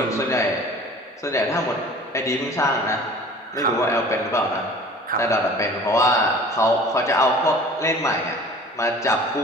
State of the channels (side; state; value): both; normal; correlation 0.45